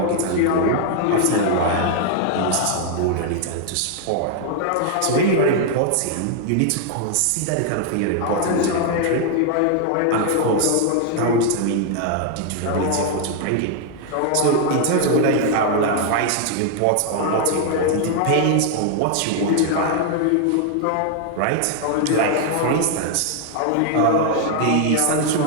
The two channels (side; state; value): both; different; correlation 0.00